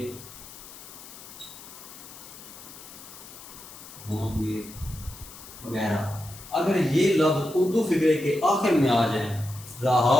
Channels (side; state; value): left; noise; hiss, 16 dB below the sound